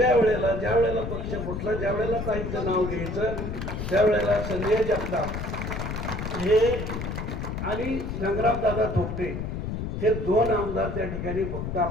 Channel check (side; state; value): left; noise; rumble, 4 dB below the sound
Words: वेळेला ज्या वेळेला पक्ष फुटला, ज्या वेळेला काहींचं नाव घ्यायचं, त्यावेळेला संजय जगताप हे आणि संग्रामदादा थोपटे हे 2 आमदार त्या ठिकाणी फक्त